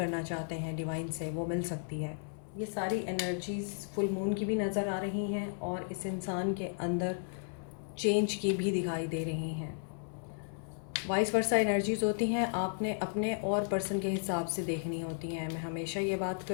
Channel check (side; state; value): right; silent; 55 dB below the other